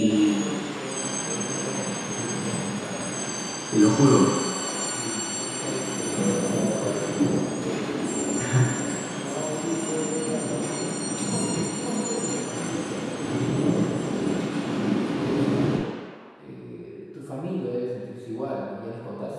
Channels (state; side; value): identical; both; correlation 1.00